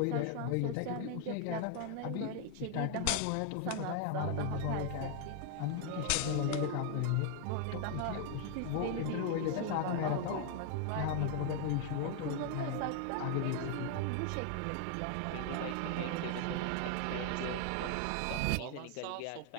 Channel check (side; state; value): both; different; correlation 0.00